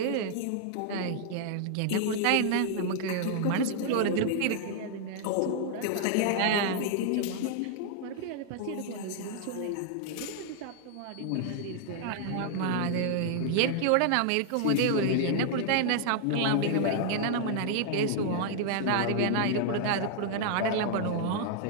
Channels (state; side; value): different; both; correlation 0.00